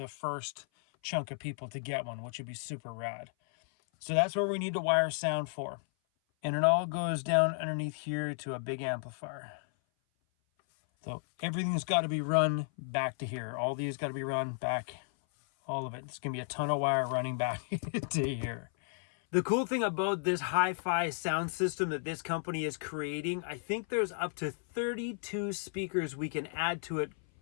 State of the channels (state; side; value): silent; right; 55 dB below the other